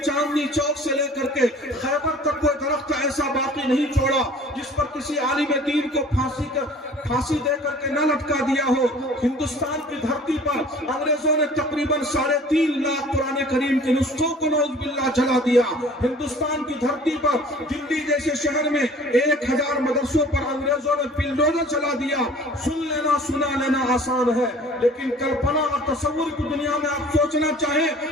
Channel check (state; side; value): normal; both; correlation 0.48